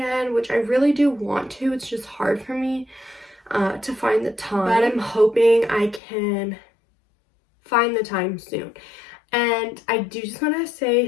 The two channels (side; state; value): right; drops out; at 6.0 s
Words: which I really do want to. It's just hard for me to find the time, but I'm hoping I can find the time soon. And I do just want to